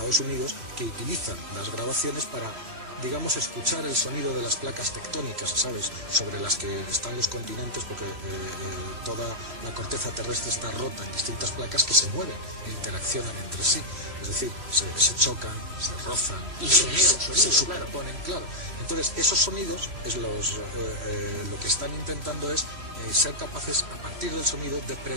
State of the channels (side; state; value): left; late; 3.1 ms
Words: Unidos que utilizan las grabaciones para, digamos, escuchar el sonido de las placas tectónicas, ¿sabes?, sobre las que están los continentes, porque toda la corteza terrestre está rota en distintas placas que se mueven e interaccionan entre sí. Es decir, se chocan, se rozan, y se superponen, claro. Entonces, esos sonidos es lo que están intentando es ser capaces, a partir del sonido, de